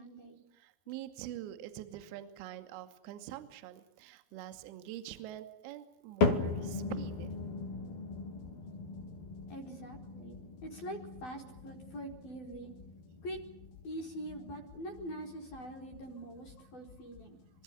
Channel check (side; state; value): right; late; 12 ms